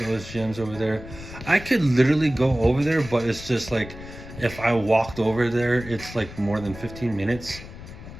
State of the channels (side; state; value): left; noise; rumble, 14 dB below the sound